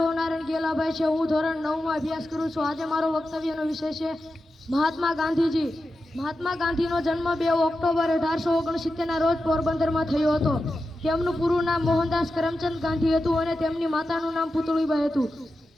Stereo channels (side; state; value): both; normal; correlation 0.91